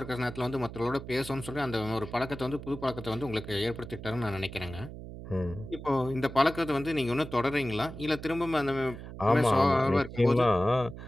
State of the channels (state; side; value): noise; right; hum, 12 dB below the sound